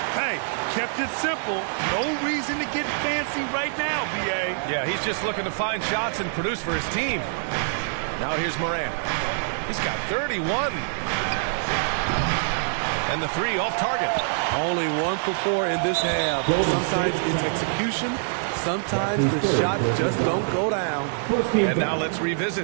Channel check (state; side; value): silent; left; 57 dB below the other